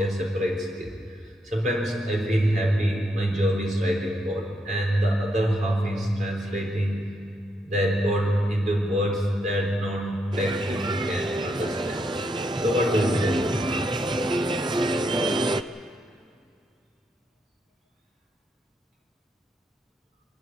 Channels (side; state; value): both; normal; correlation 0.79